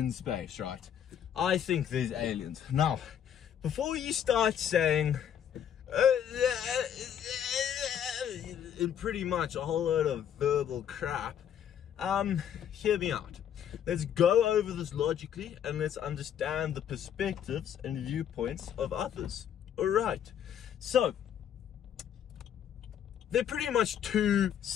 space, right? I think there's aliens. Now, before you start saying pretty much a whole load of verbal crap, hear me out. Let's go over this logically and let's understand the perspectives and viewpoints of others. Alright, so there are pretty much two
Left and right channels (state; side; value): quieter; right; 9.3 dB